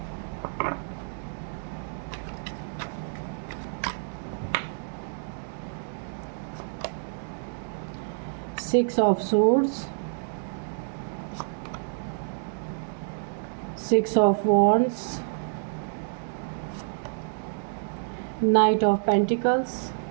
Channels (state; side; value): silent; left; digital silence